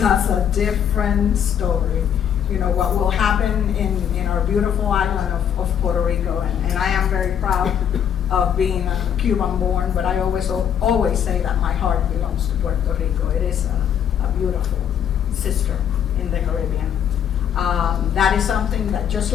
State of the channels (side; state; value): right; quieter; 8.9 dB